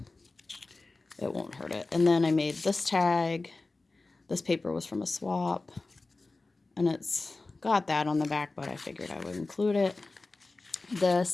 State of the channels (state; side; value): quieter; right; 3.4 dB